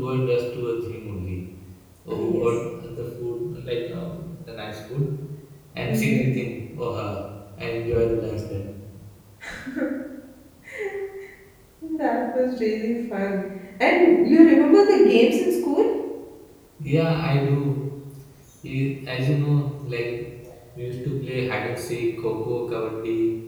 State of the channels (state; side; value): identical; both; correlation 1.00